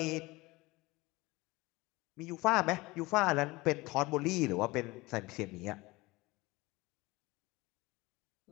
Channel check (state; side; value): quieter; right; 21.9 dB